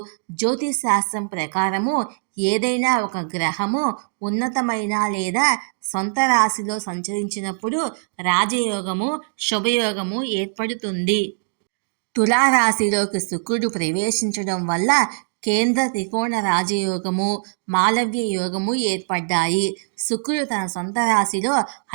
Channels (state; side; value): silent; left; digital silence